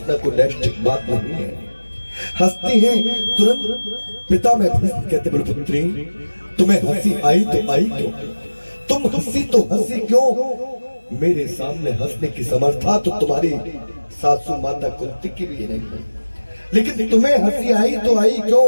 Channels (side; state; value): both; inverted; correlation -1.00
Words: कोई नैष्ठिक बात नहीं है, हंसती है। तुरंत पिता में भीष्म कहते, बोले पुत्री, तुम्हें हंसी आई तो आई क्यों? तुम हंसी तो हंसी क्यों? मेरे सामने हंसने की समर्था तो तुम्हारी सासू माता कुंती की भी नहीं है, लेकिन तुम्हें हंसी आई तो आई क्यों?